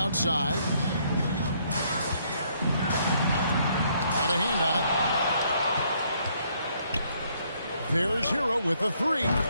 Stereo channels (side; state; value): both; inverted; correlation -0.69